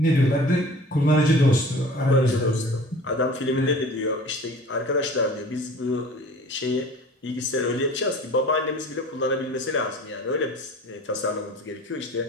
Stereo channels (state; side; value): normal; both; correlation 0.44